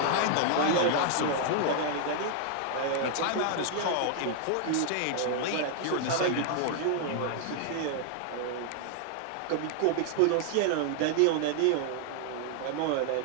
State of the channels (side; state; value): both; different; correlation 0.00